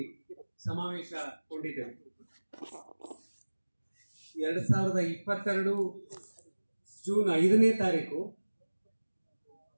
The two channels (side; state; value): both; inverted; correlation -1.00